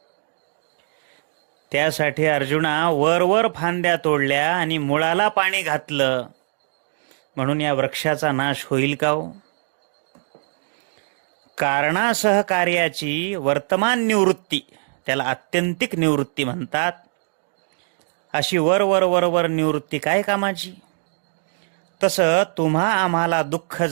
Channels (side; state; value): left; silent; digital silence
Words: त्यासाठी अर्जुना वर फांद्या तोडल्या आणि मुळाला पाणी घातलं म्हणून या वृक्षाचा नाश होईल का हो? कारणासह कार्याची वर्तमान निवृत्ती, त्याला आत्यंतिक निवृत्ती म्हणतात. अशी वर निवृत्ती काय कामाची? तसं तुम्हा आम्हाला दुःख